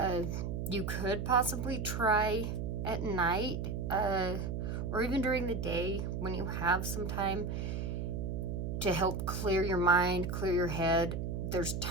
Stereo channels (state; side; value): noise; right; hum, 2 dB below the sound